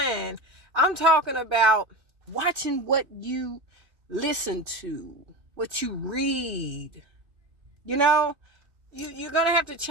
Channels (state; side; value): late; left; 2.6 ms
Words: I'm talking about watching what you listen to, what you read. You're going to have to